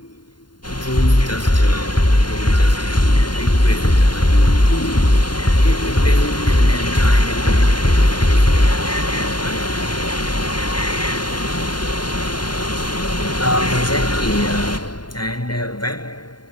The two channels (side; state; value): right; late; 0.71 ms